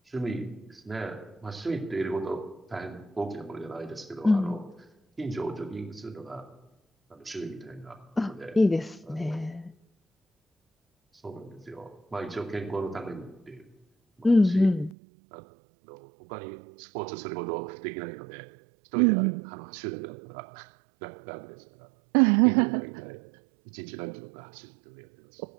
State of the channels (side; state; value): left; drops out; at 14.9 s